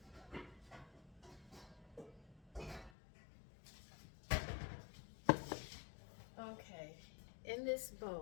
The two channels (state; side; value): drops out; right; at 2.9 s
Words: Okay, in this